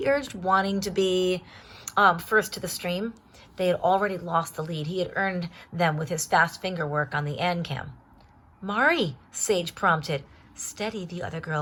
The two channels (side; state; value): both; identical; correlation 1.00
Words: urged, wanting to be first to the stream. They had already lost the lead. He had earned them with his fast finger work on the ANCAM. Mari, Sage prompted. Steady, the other